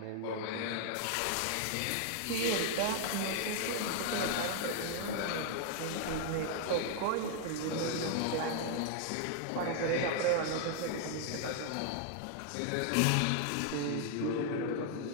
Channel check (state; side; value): different; both; correlation 0.00